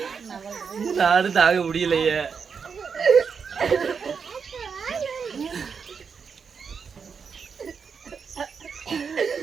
நானும் தாங்க முடியலையே.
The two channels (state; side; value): quieter; left; 6.1 dB